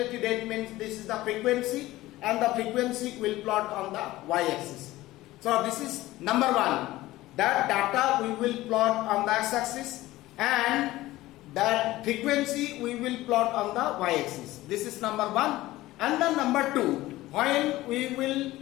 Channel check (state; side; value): quieter; right; 17.2 dB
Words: rate means this is the frequency, and the frequency will plot on the y-axis. So this is number 1. That data we will plot on the x-axis, and that frequency we will plot on the y-axis. This is number 1. And then number 2, when we will